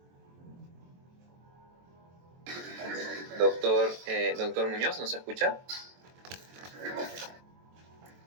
Doctor Muñoz, ¿nos escucha?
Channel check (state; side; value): late; left; 23 ms